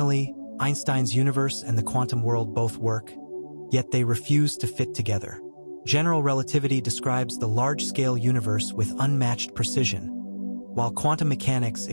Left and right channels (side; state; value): both; inverted; correlation -1.00